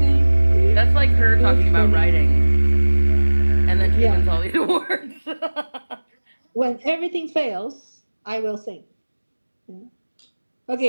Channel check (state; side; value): inverted; both; correlation -1.00